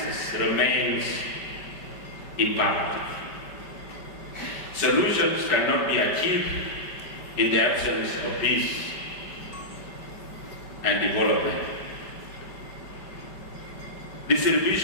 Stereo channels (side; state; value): right; late; 5.3 ms